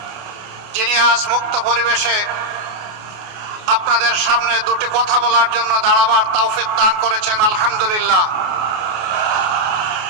যিনি আজ মুক্ত পরিবেশে আপনাদের সামনে দুটি কথা বলার জন্য দাঁড়াবার তৌফিক দান করেছেন। আলহামদুলিল্লাহ।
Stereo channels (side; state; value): left; late; 28 ms